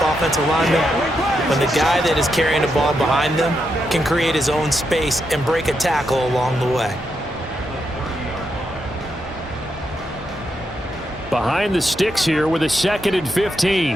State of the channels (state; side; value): normal; both; correlation 0.83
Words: offensive linemen? When the guy that is carrying the ball behind them can create his own space and break a tackle along the way. Behind the sticks here with a 2nd and